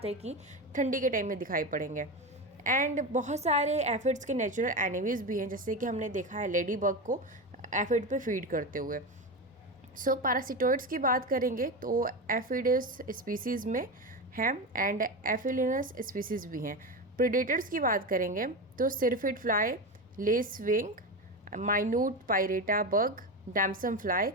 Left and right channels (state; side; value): normal; both; correlation 0.19